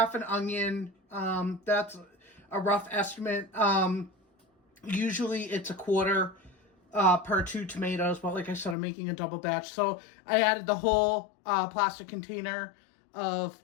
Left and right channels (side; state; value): right; drops out; at 8.8 s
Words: an onion, that's a rough estimate. Usually it's a quarter per 2 tomatoes, but like I said, I'm making a double batch. So I added the whole plastic container of